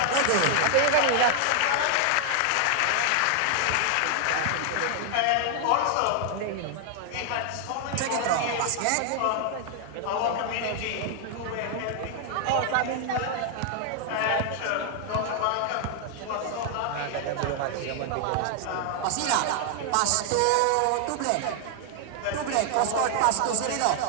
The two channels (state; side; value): different; both; correlation 0.00